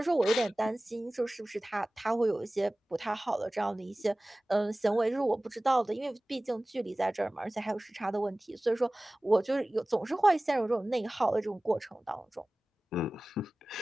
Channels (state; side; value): normal; both; correlation 0.98